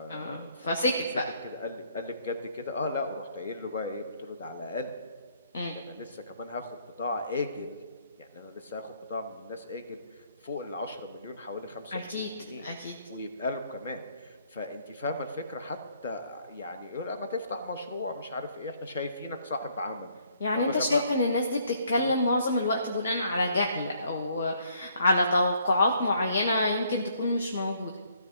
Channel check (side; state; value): both; inverted; correlation -0.66